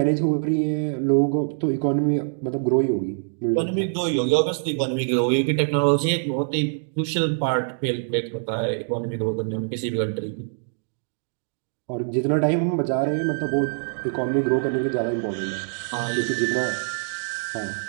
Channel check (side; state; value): left; silent; digital silence